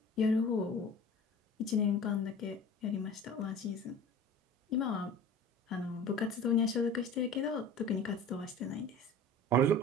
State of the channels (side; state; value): both; normal; correlation 0.40